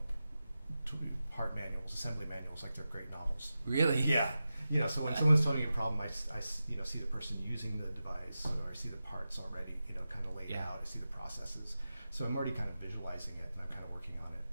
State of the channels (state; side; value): inverted; both; correlation -0.93